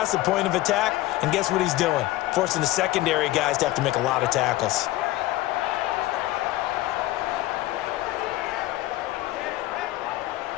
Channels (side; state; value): right; quieter; 17.0 dB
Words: the point of attack, and guess what he's doing? Forcing the secondary guys to have to make a lot of tackles.